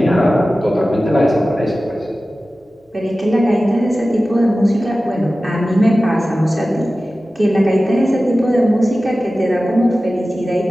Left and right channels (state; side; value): normal; both; correlation 0.96